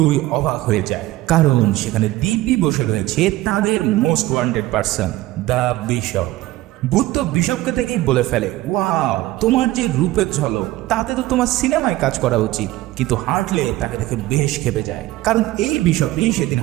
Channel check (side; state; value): left; quieter; 17.1 dB